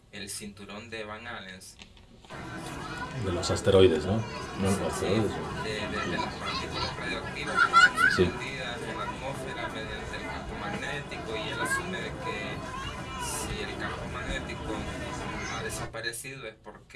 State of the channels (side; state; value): both; identical; correlation 1.00